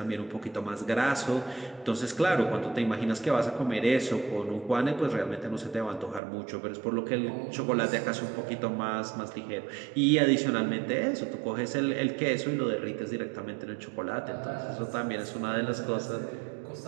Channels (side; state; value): left; drops out; at 6.2 s